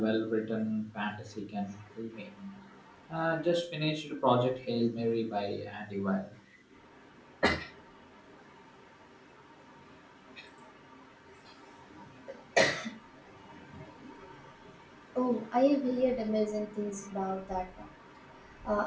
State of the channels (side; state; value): both; identical; correlation 1.00